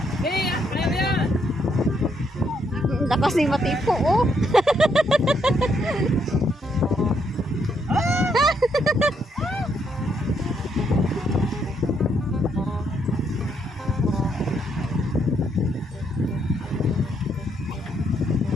Lakas ni Matipo, oh.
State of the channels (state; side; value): normal; both; correlation 0.74